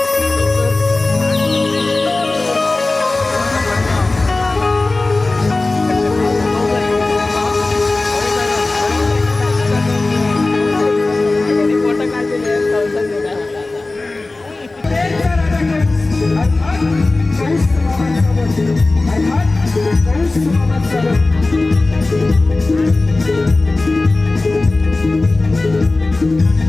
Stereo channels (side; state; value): right; quieter; 3.2 dB